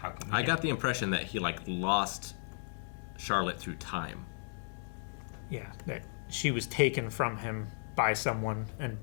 come I got the impression that he, like, lost Charlotte through time. Yeah, that she was taken from him by someone and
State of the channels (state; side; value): silent; right; 55 dB below the other